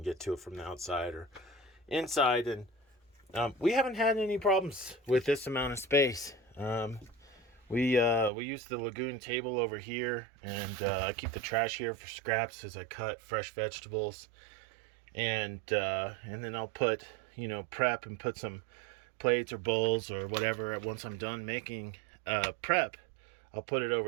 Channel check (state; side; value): drops out; left; at 8.3 s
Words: get to it from the outside or inside, and we haven't had any problems with this amount of space. We use the lagoon table over here, and I keep the trash here for scraps as I cut fresh vegetables, and then I'll put prep and put some plates or bowls or whatever. Once I'm done making prep, I'll put it